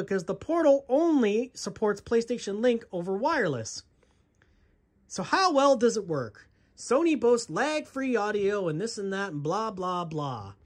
the Portal only supports PlayStation Link over wireless. So how well does it work? Sony boasts lag-free audio and this and that and blah, blah, blah.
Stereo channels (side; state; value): both; identical; correlation 1.00